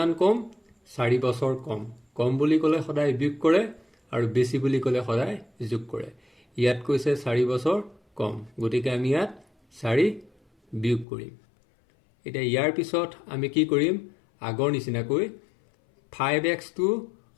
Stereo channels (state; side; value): drops out; right; at 11.1 s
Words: কম 4 বছৰ কম বুলি ক'লে সদায় বিয়োগ কৰে আৰু বেছি বুলি ক'লে সদায় যোগ কৰে ইয়াত কৈছে 4 বছৰ কম গতিকে আমি ইয়াত 4 বিয়োগ কৰিম এতিয়া ইয়াৰ পিছত আমি কি কৰিম আগৰ নিচিনাকৈ 5x টো